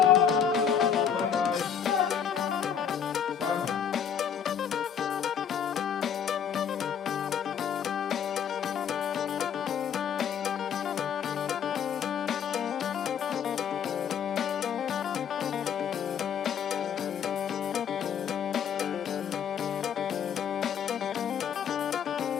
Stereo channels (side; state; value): right; quieter; 8.0 dB